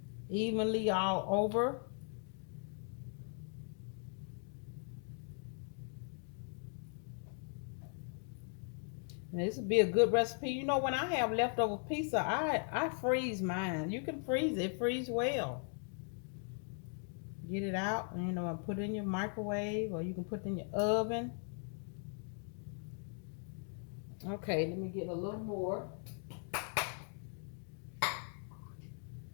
evenly all over. And this would be a good recipe. You know, when I have leftover pizza, I freeze mine. You can freeze it. It freeze well. Get it out and, you know, and put it in your microwave, or you can put it in your oven. Okay, let me get a little more.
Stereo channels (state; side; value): silent; right; 52 dB below the other